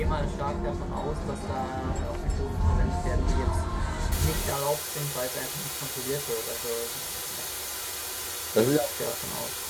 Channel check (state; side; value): identical; both; correlation 1.00